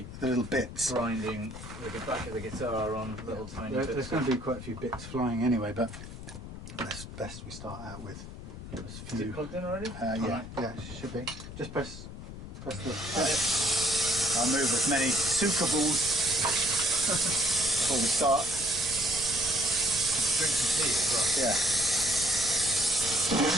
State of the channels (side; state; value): left; noise; rumble, 11 dB below the sound